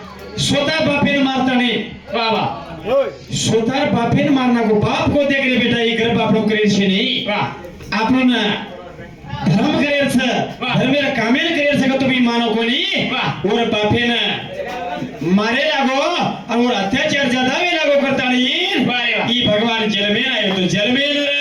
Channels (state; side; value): identical; both; correlation 1.00